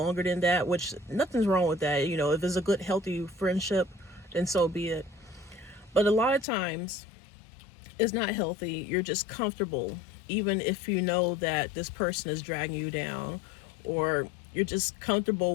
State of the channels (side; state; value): right; drops out; at 6.5 s